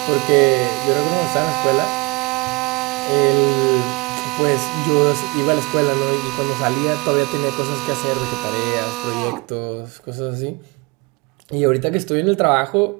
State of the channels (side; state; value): left; quieter; 26.7 dB